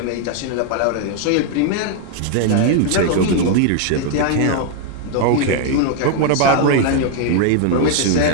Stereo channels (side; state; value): both; different; correlation 0.00